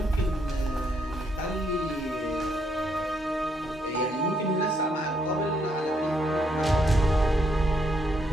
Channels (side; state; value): both; normal; correlation 0.74